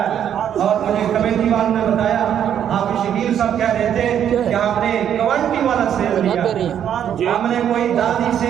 ہے۔ اور مجھے کمیٹی والوں نے بتایا آپ شکیل صاحب کہہ رہے تھے کہ آپ نے کوانٹی والا سیب لیا، ہم نے کوئی دادی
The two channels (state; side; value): quieter; left; 9.5 dB